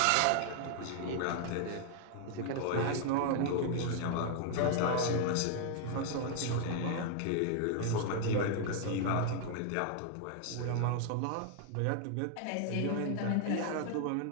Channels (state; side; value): different; both; correlation 0.00